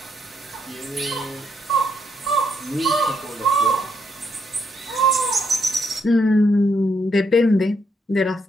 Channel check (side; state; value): both; normal; correlation 0.75